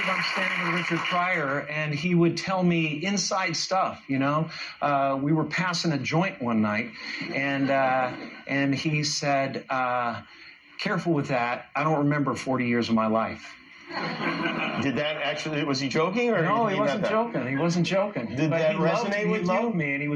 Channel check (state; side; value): identical; both; correlation 1.00